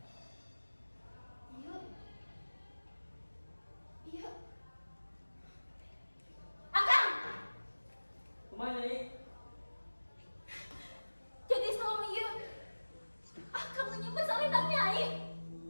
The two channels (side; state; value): both; inverted; correlation -1.00